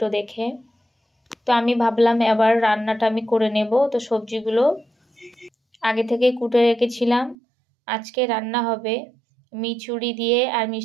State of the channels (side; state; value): left; drops out; at 7.4 s